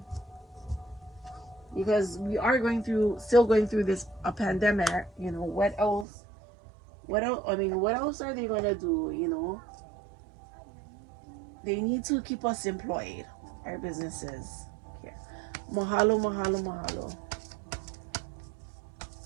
because we are still going through this a pandemic. You know, what else? What else? I mean, what else are they gonna do? You know, they need to keep us employed, our businesses. Okay. Mahalo, mahalo, mahalo.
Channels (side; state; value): left; drops out; at 6.1 s